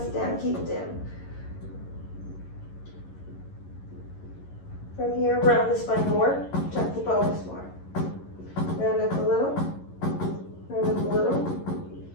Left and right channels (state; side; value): late; right; 11 ms